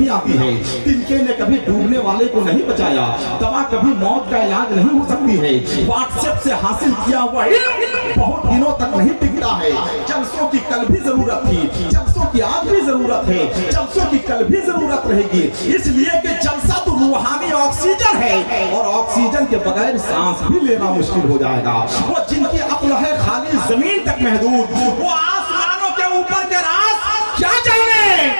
आती है। तिनके ने कभी डूबने वाले को नहीं बचाया, दवा कभी मौत का इलाज नहीं हो सकती है। व्हाट्सएप से हासिल किया हुआ इल्म बहुत दिनों तक नहीं टिकता है। जलसों की कल भी जरूरत थी, जलसों की आज भी जरूरत है, जलसों की कल भी जरूरत रहेगी, इसलिए कि जलसा तो रूहानी ऑक्सीजन है, और ऑक्सीजन के बगैर सांस भी लेना मुश्किल हो जाएगा। वो जिनकी अक्ल है खाली जमीन तक महदूद, वो आसमानों के ऊपर के राज क्या जाने,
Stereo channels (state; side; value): inverted; both; correlation -1.00